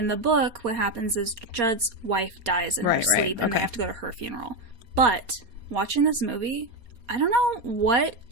the book, what happens is Judd's wife dies in her sleep, and they have to go to her funeral. But watching this movie, I don't know what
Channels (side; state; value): left; late; 4.3 ms